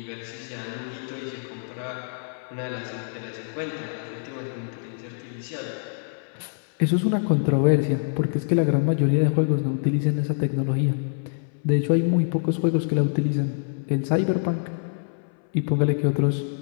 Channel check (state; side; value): silent; right; 60 dB below the other